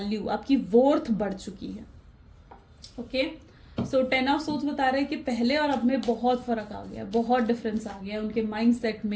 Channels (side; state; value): both; identical; correlation 1.00